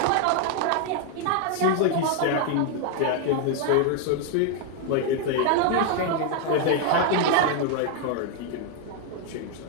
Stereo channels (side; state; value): both; different; correlation 0.01